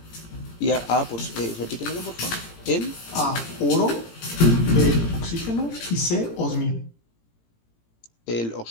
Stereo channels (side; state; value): right; late; 17 ms